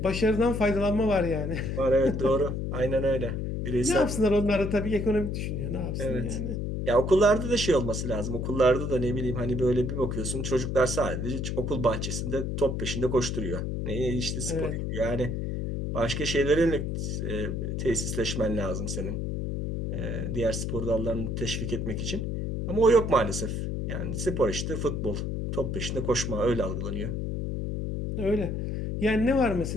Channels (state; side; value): noise; left; hum, 2 dB below the sound